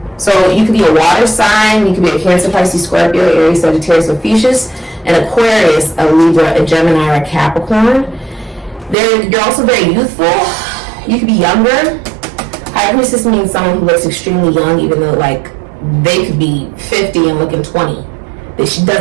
So you could be a water sign, you could be a Cancer, Pisces, Scorpio, Aries, Sagittarius, Ophiuchus, and Aquarius, a Libra, a Gemini, or a Capricorn. You're also very youthful. You could be younger. High Priestess means someone who looks extremely young, even though like they could be 50 and looking 20. That she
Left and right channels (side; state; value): left; drops out; at 9.0 s